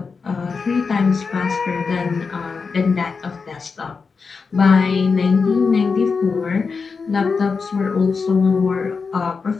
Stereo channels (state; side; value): quieter; right; 5.0 dB